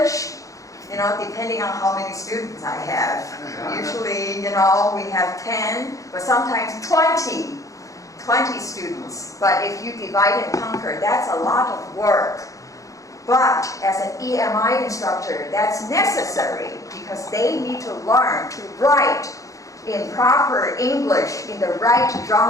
depending on how many students I have. Usually, we have 10, but sometimes 20 students. But if you divide and conquer, that's a lot of work. But as an EMI instructor, that's necessary because they need to learn to write in proper English in the right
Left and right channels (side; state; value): right; late; 0.16 ms